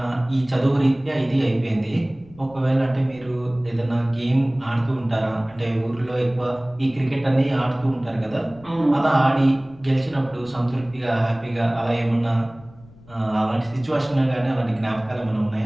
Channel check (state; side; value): noise; left; rumble, 24 dB below the sound